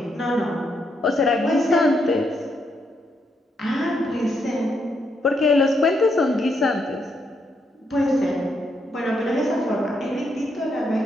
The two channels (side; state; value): both; normal; correlation 0.78